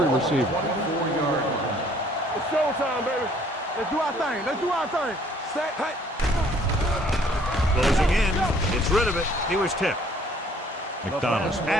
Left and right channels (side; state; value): both; normal; correlation 0.59